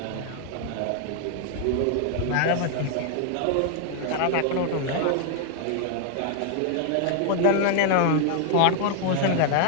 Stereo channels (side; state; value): both; different; correlation 0.00